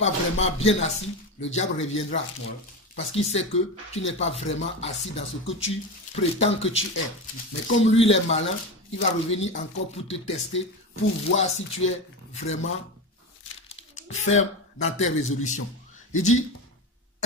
vraiment bien assis, le diable reviendra. Parce qu'il sait que tu n'es pas vraiment assis dans ce que tu prétends que tu es. Mais comme lui, il est malin, il va revenir encore pour te tester, pour voir si tu es vraiment ferme dans tes résolutions. Il dit,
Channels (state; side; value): normal; both; correlation 0.21